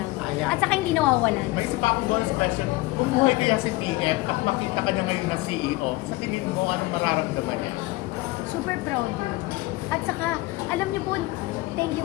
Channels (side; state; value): right; quieter; 20.1 dB